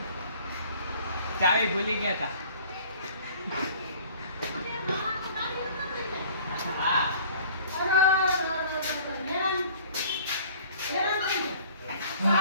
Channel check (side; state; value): both; inverted; correlation -0.50